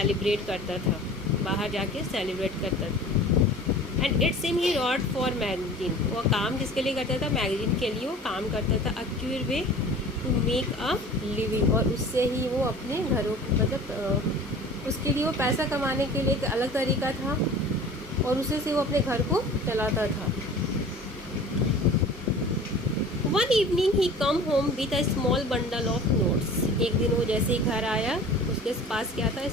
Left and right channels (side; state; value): both; normal; correlation 0.42